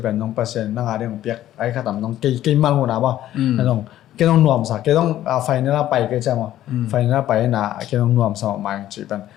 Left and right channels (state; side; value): quieter; right; 13.0 dB